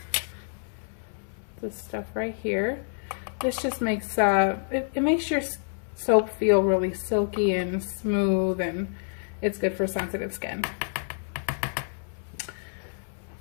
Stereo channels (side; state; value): right; silent; 59 dB below the other